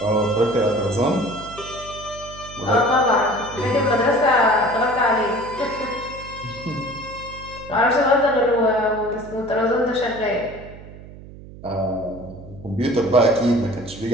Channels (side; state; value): right; noise; hum, 17 dB below the sound